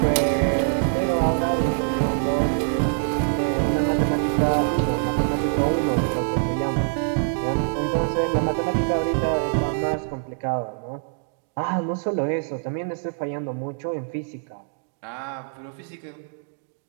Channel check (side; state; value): left; silent; digital silence